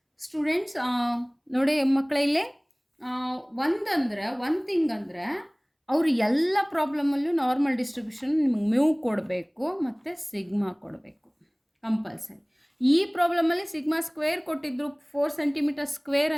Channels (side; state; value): both; identical; correlation 1.00